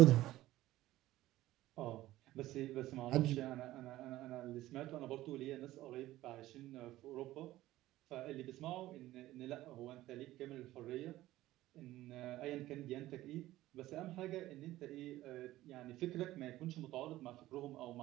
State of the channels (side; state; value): left; quieter; 15.7 dB